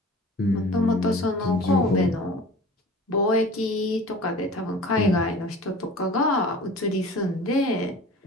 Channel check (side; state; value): both; normal; correlation 0.41